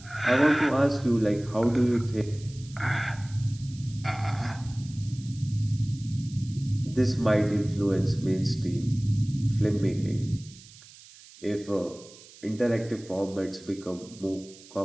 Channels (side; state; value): right; noise; hiss, 21 dB below the sound